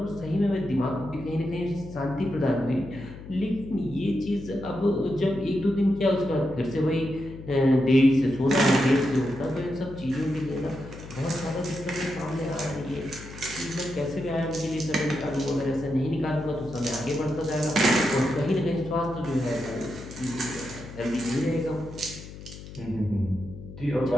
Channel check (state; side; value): noise; left; hum, 14 dB below the sound